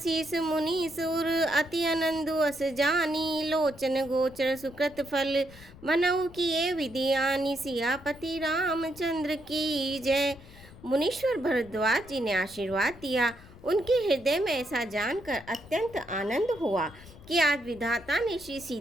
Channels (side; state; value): left; noise; rumble, 20 dB below the sound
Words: मुनि सुर अति आनंदु अस जानी, लोचन गोचर सुकृत फल मनऊ किए विधियानी, सियापति रामचंद्र की जय। मुनीश्वर भरद्वाज जी ने आशीर्वाद दिया। उनके हृदय में ऐसा जानकर अत्यंत आनंद हुआ कि आज विधाता ने श्री